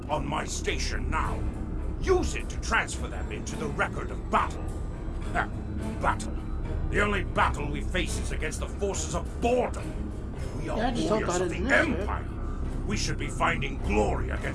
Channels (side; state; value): both; identical; correlation 1.00